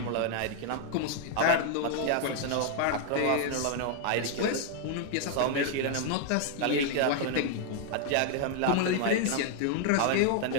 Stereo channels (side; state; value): both; different; correlation 0.00